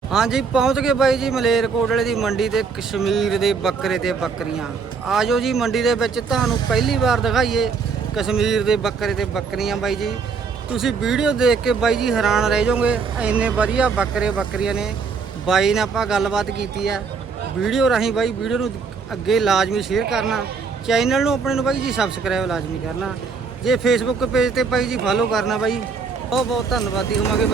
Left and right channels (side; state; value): left; quieter; 5.2 dB